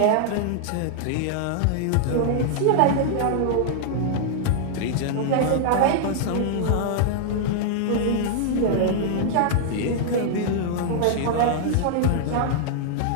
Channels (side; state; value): both; different; correlation -0.01